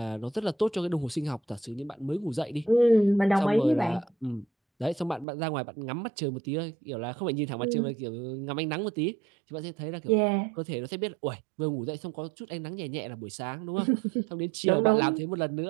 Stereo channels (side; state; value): left; drops out; at 5.2 s